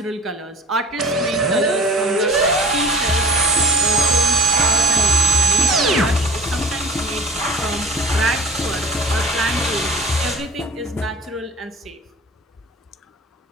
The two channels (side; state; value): both; normal; correlation 0.41